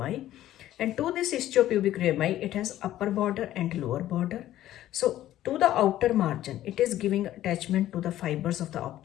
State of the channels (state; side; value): quieter; right; 13.4 dB